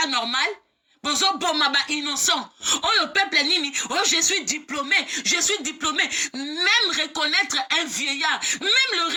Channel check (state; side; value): identical; both; correlation 1.00